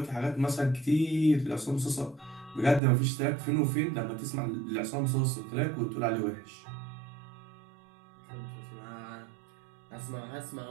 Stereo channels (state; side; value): drops out; left; at 2.8 s